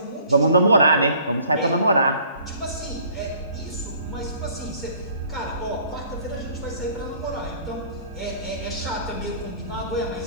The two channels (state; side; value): inverted; both; correlation -0.54